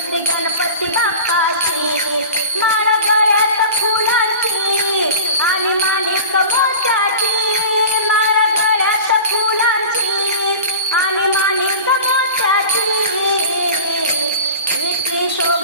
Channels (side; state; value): both; inverted; correlation -0.35